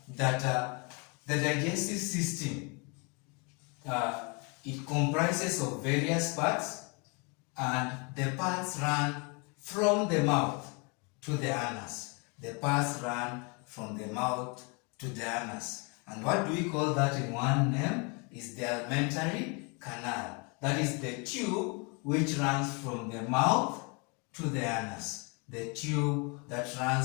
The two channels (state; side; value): quieter; right; 32.4 dB